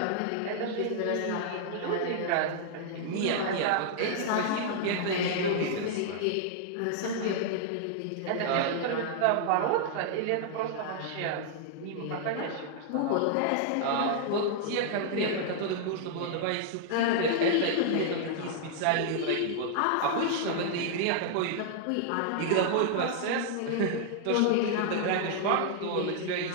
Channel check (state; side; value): different; both; correlation -0.01